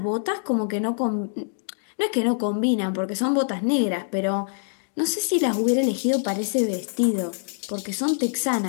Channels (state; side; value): silent; right; digital silence